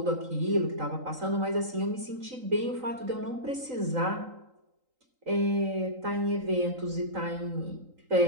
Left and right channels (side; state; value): left; late; 3.9 ms